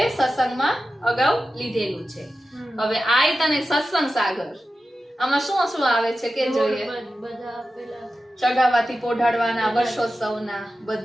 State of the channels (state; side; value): normal; both; correlation 0.93